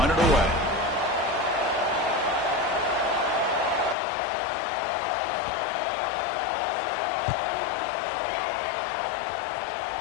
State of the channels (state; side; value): drops out; right; at 4.0 s